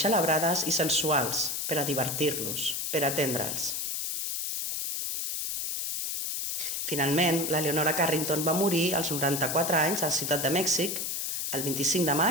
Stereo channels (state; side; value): noise; left; hiss, 2 dB below the sound